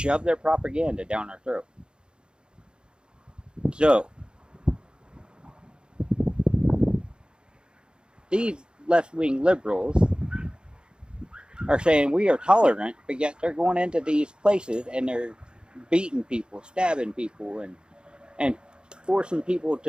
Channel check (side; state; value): left; late; 0.050 ms